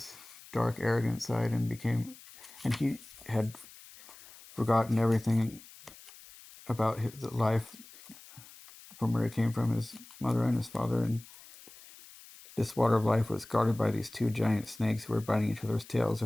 dark, arrogant side and he had forgotten everything about his life from where he came from, his mother and his father. And this water of life was guarded by these two giant snakes who were biting each other's tails.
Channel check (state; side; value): noise; left; hiss, 20 dB below the sound